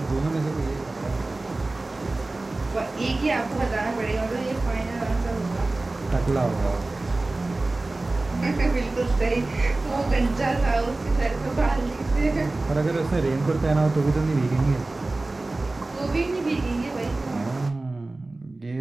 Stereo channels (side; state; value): left; quieter; 3.1 dB